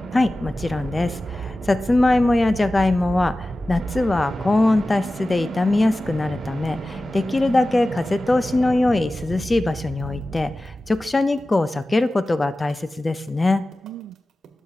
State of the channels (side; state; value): both; normal; correlation 0.95